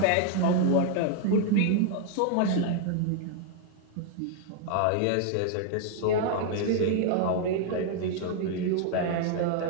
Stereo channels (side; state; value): both; different; correlation 0.00